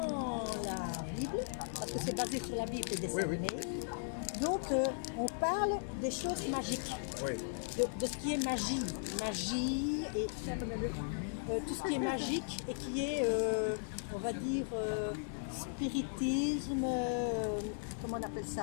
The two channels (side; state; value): right; silent; digital silence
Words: la Bible, parce que c'est basé sur la Bible et des dessins Oui, oui. animés, donc on parle des choses magiques, Oui, de ce qui est magie, et tout ce qui est magique et qui est, on va dire, spiritisme, comment on appelle